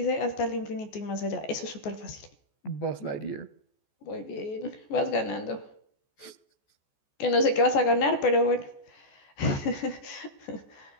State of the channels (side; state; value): right; late; 14 ms